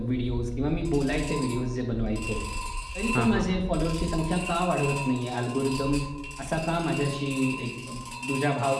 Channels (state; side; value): identical; both; correlation 1.00